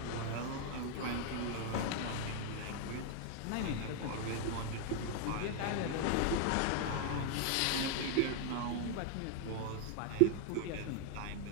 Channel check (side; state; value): both; different; correlation 0.00